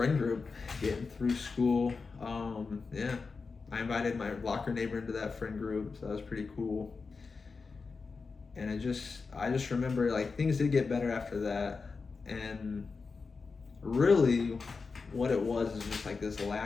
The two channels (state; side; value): quieter; right; 4.6 dB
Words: group getting through school. Yeah, I invited my locker neighbor into that friend group, so that was pretty cool. And I just remember, like, things did get better after that. And really what it was is just like this